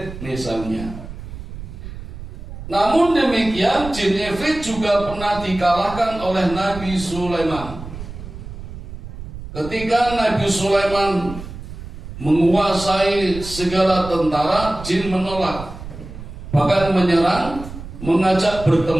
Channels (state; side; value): noise; right; rumble, 12 dB below the sound